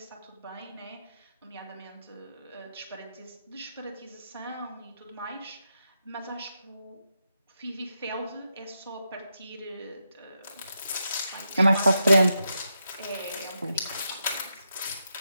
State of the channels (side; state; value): both; inverted; correlation -0.85